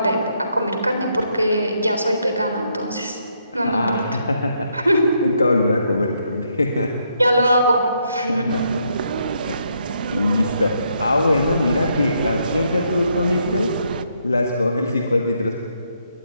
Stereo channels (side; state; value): both; inverted; correlation -0.75